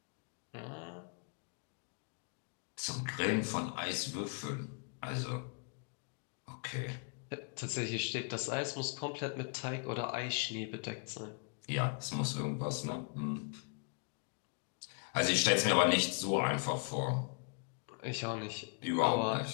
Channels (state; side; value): quieter; right; 39.4 dB